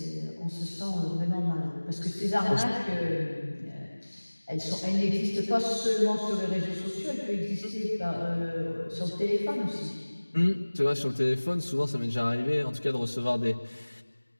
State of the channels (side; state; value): both; inverted; correlation -1.00